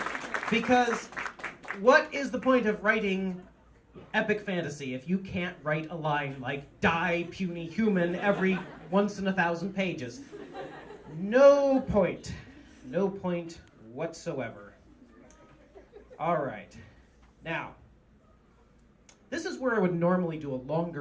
Because what is the point of writing epic fantasy if you can't write a line like die, puny human every once in 1,000 pages? No point. No point whatsoever. All right. Now, this is where I would normally do a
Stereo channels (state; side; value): identical; both; correlation 1.00